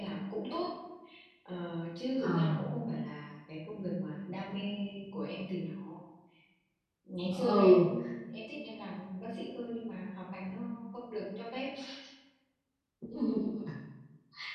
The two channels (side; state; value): both; identical; correlation 1.00